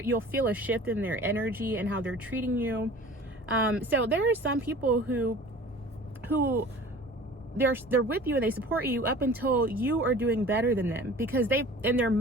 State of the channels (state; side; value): normal; both; correlation 0.43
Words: You'll feel a shift in their energy and how they're treating you. So there are some people who they're with you and they support you up until you are doing better than them, because in their